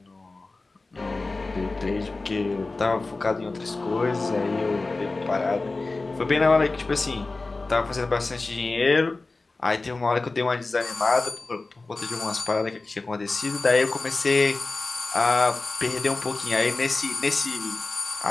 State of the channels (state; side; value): quieter; right; 3.4 dB